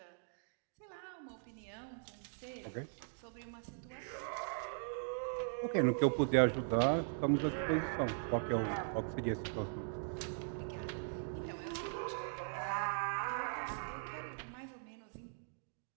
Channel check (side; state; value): left; silent; digital silence